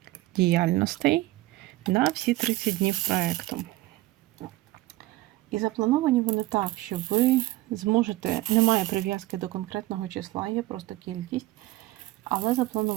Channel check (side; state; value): left; quieter; 17.8 dB